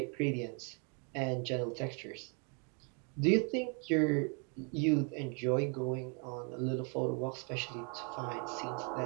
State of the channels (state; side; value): quieter; left; 36.3 dB